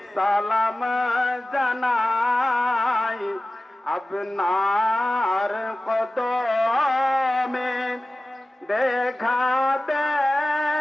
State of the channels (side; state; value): both; normal; correlation 0.96